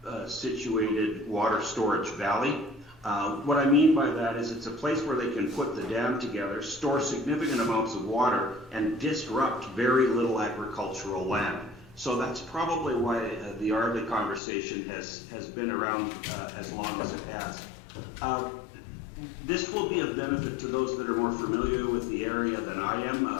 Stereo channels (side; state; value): right; drops out; at 14.4 s